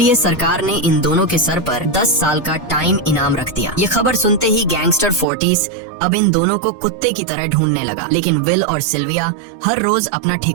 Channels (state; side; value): drops out; left; at 5.2 s